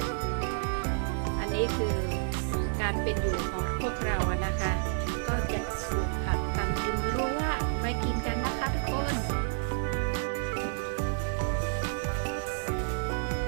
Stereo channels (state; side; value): silent; left; digital silence